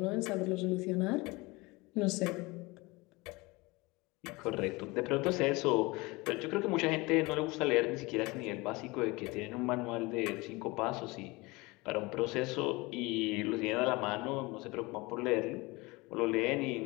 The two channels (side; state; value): right; quieter; 23.7 dB